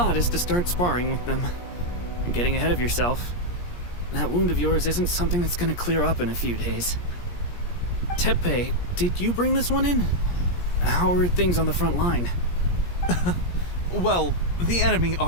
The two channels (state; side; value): late; right; 17 ms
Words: is to start sparring with them. You're getting ahead of yourself. That wound of yours isn't something that's gonna clear up in a few days. Tepe, did you bring this one in? How are things on the front line? Well, the enemy